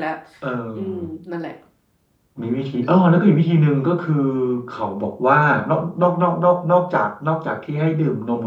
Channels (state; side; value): identical; both; correlation 1.00